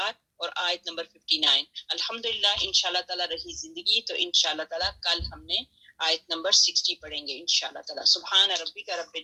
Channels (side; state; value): both; identical; correlation 1.00